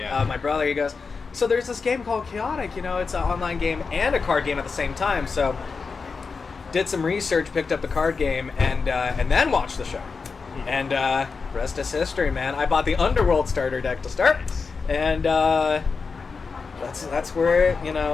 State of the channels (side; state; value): right; quieter; 4.9 dB